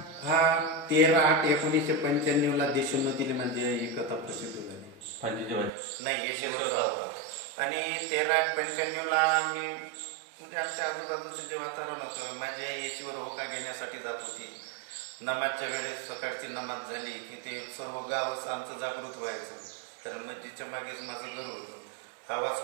हा 13/8/1995 देशोन्नतीने म्हणजे ही कथा प्रसिद्ध झाली. नाही येशीवरचा होका आणि 13/8/95 आम्ही म्हणजे आमच्या आजूबाजूचं जे वातावरण होतं माझी आई येशीवर होका घेण्यासाठी जात होती. नमाजच्या वेळेस सकाळची नमाज झाली की ते सर्व गावच आमचं जागृत व्हायचं कारण मस्जिदच्या मागेच माझं घर होतं. आवाज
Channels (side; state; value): left; drops out; at 5.7 s